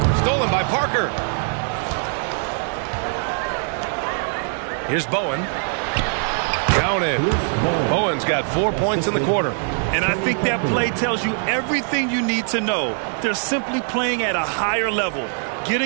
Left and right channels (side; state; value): left; silent; 56 dB below the other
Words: Stolen by Parker. Here's Bowen. Counted. Bowen's got 4 points in the quarter. And I think that play tells you everything you need to know. They're simply playing at a higher level,